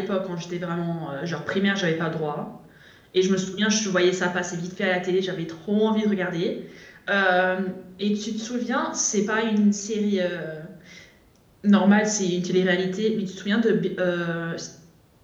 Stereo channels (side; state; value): both; identical; correlation 1.00